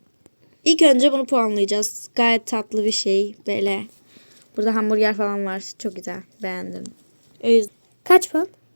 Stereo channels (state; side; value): inverted; both; correlation -1.00